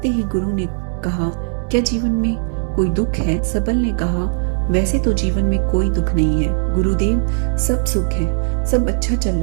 ही गुरु ने कहा, क्या जीवन में कोई दुख है? सबल ने कहा, वैसे तो जीवन में कोई दुख नहीं है गुरुदेव, सब सुख है, सब अच्छा चल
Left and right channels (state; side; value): silent; left; digital silence